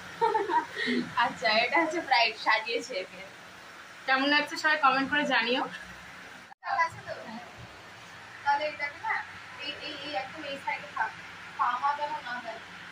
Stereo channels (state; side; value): identical; both; correlation 1.00